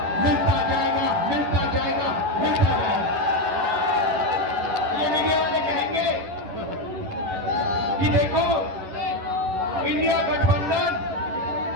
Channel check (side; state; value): left; late; 11 ms